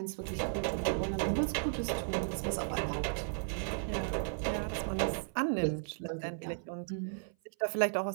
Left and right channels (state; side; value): silent; left; 54 dB below the other